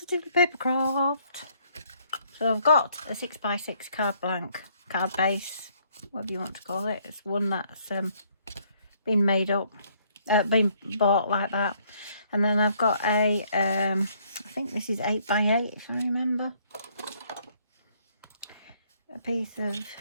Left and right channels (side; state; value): both; inverted; correlation -0.66